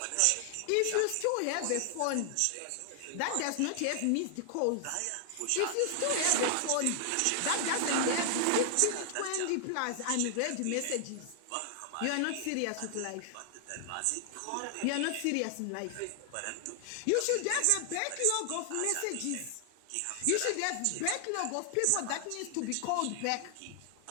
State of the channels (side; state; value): both; different; correlation 0.00